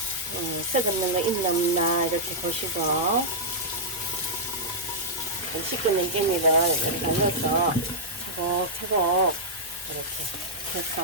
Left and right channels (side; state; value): both; normal; correlation -0.09